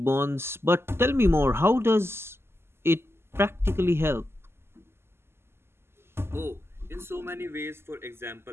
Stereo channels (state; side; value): late; left; 0.12 ms